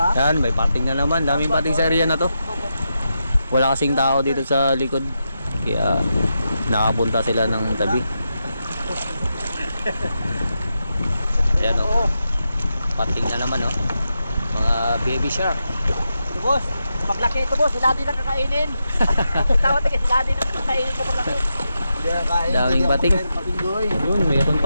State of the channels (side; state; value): both; inverted; correlation -0.87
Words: Yan, may pating na naman. Daming pating sa area na to. Wala kasing tao dito sa likod. Kaya nakapunta sila ng tabi. Ayan o. Pating na naman o. Mga baby shark. Ito boss, paglaki ito boss, sila din ang kakainin. Tawad ka, sila din ang kakainin ko paglaki. Daming pating. Yun, mayroon